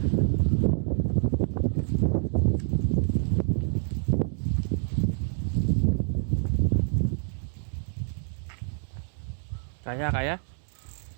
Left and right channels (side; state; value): left; silent; digital silence